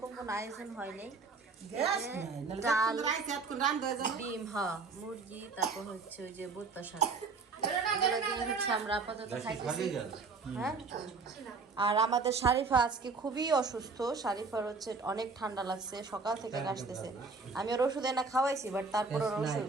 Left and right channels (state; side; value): quieter; left; 4.4 dB